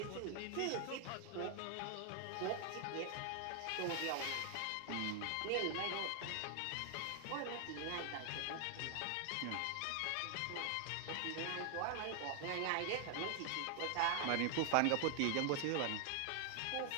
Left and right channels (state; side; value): different; both; correlation 0.00